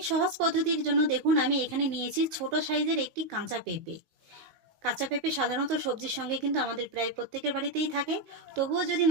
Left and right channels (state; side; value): late; left; 19 ms